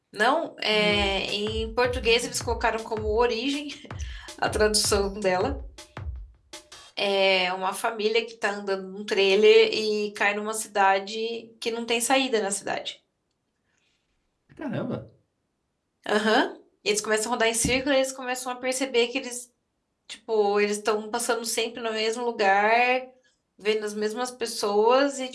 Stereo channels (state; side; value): identical; both; correlation 1.00